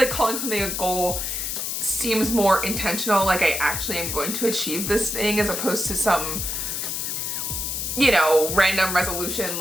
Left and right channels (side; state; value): left; noise; hiss, 2 dB below the sound